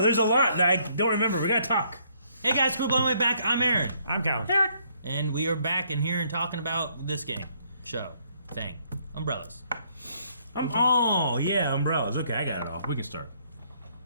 there's a lot that I don't remember. We gotta talk. Hey guys, quit blowing my back. I'm Aaron. I'm Calvin. Eric. And we are back in here and talking about this game. Show. Thing. Umbrellas. Oh, yeah, umbrellas. Okay, I got it all. We can start.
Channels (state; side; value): inverted; both; correlation -0.67